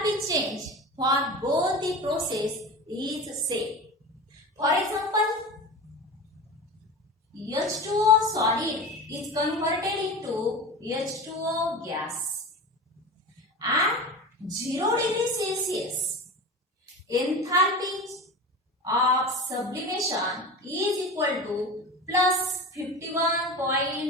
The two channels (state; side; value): normal; both; correlation 0.30